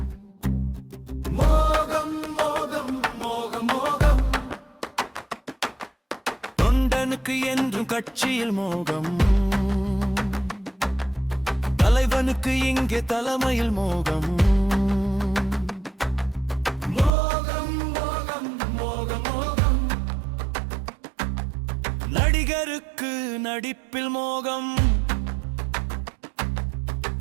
மோகம் மோகம் மோகம் மோகம், தொண்டனுக்கு என்றும் கட்சியில் மோகம், தலைவனுக்கு இங்கே தலைமையில் மோகம். மோகம் மோகம் மோகம் மோகம், நடிகருக்கு நடிப்பில் மோகம்,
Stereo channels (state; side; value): drops out; left; at 17.1 s